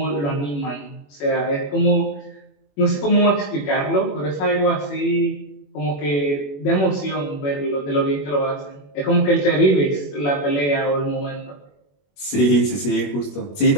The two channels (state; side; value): late; right; 21 ms